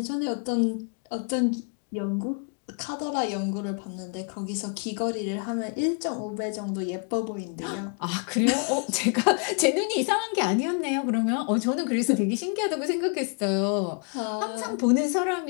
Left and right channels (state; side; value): quieter; right; 39.7 dB